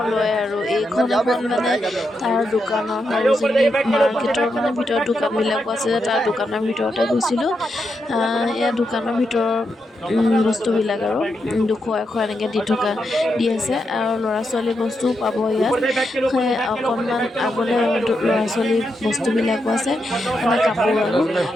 লয় আৰু এইখন এখন তাৰ দোকানৰ সৰোজিনী মাৰ্কেটৰ ভিতৰত দোকানবিলাকো আছে যে তাৰ দোকানৰ ভিতৰতে গৈছিলোঁ। এয়া দোকানৰ ভিতৰৰ বস্তুবিলাক আৰু 200 100 এনেকৈ দি আছে আৰু ল'ৰা ছোৱালী বস্তুও পাব ইয়াত। অকণমান আগলৈ ল'ৰা ছোৱালী বস্তুবিলাকো আছে, কাপোৰ আৰু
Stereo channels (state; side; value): normal; both; correlation 0.84